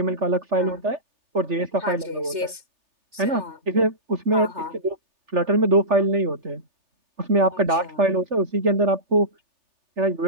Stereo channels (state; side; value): late; left; 3.3 ms